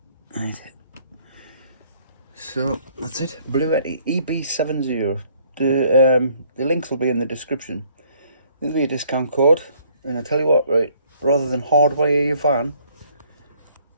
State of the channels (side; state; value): both; inverted; correlation -0.63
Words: Right. So that's it, Bluetti EB70. The links will be in the description. There'll be a discount code, and I tell you what, right, rather than hardwire your van,